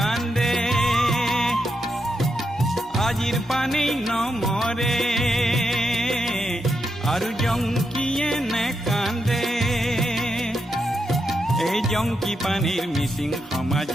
আজিৰ পানী নমৰে আৰু জংকিয়ে নেকান্দে এই জংকি পানীৰ মিচিং সমাজ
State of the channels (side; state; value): both; normal; correlation 0.84